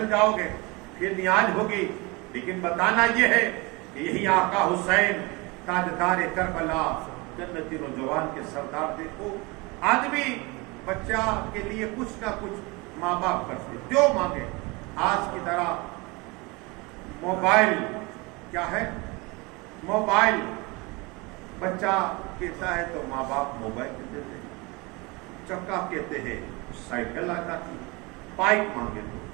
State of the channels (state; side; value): quieter; left; 26.1 dB